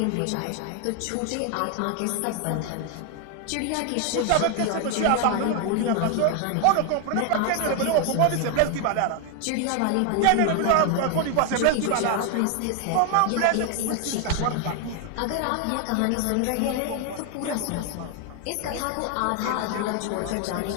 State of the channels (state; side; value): different; both; correlation 0.00